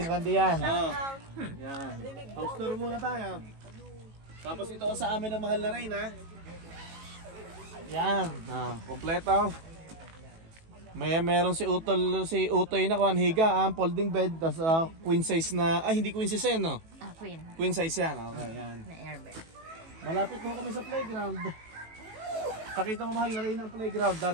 Randy yan. Yan. House tour muna tayo. Tapos ito sa amin ang mahal na rin, ha. Yan, kompleto. Meron si Utoy na kuan higa, folding bed, tas queen size na, hindi queen size yan, no? Queen. Queen size yan, okay, yan. Na airbed. Malapit mo kami sa playground. Pakita mo mahal na rin ang playground,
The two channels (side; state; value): left; late; 18 ms